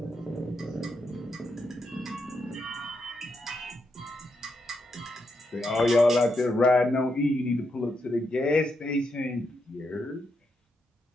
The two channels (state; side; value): normal; both; correlation 0.82